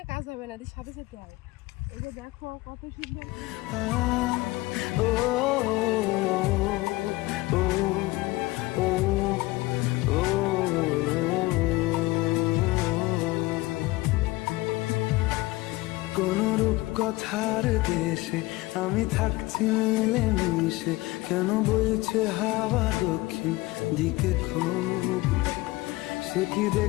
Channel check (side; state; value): right; quieter; 20.4 dB